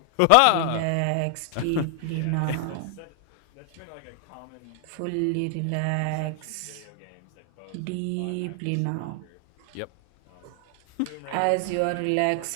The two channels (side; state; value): both; different; correlation 0.00